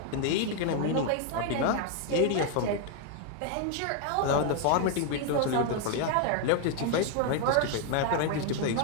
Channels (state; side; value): different; both; correlation 0.00